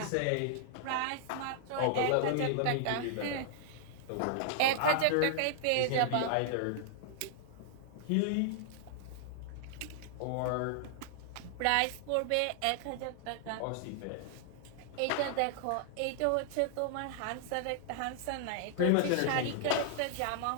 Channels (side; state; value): both; different; correlation -0.01